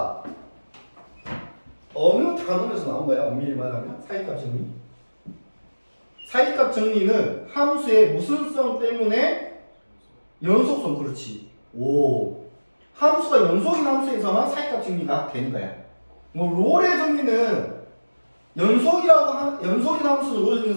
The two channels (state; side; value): inverted; both; correlation -1.00